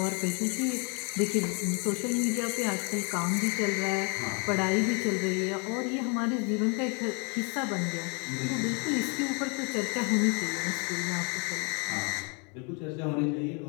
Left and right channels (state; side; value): quieter; right; 34.7 dB